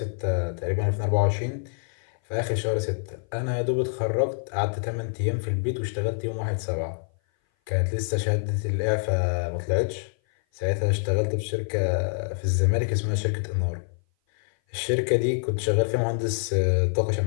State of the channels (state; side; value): silent; right; 57 dB below the other